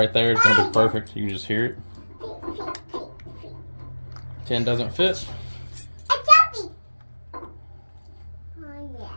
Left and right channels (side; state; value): both; inverted; correlation -1.00